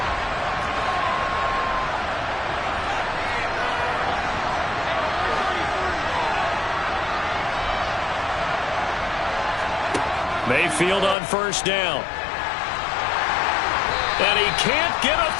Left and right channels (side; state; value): right; drops out; at 11.2 s